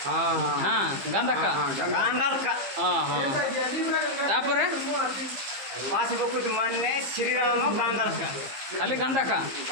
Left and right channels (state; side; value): late; left; 15 ms